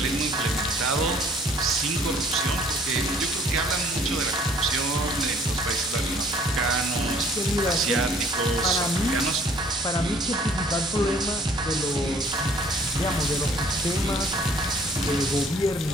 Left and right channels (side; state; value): both; normal; correlation 0.57